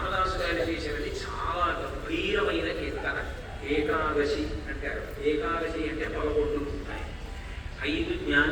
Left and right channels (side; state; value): both; identical; correlation 1.00